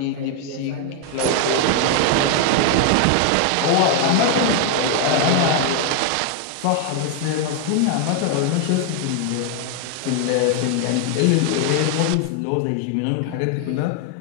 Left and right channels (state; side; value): different; both; correlation 0.00